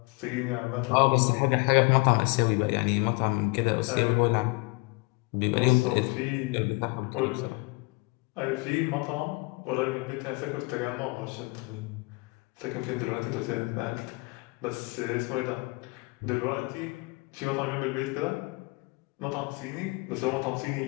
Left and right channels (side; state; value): right; quieter; 26.9 dB